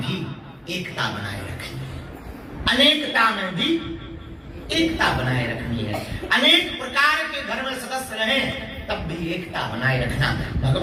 भी एकता बनाए रखनी है, अनेकता में भी एकता बनाए रखनी है। अनेक प्रकार के घर में सदस्य रहें तब भी एकता बनाए रखना,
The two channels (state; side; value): identical; both; correlation 1.00